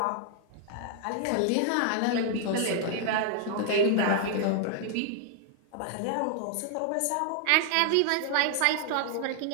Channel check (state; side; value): different; both; correlation 0.00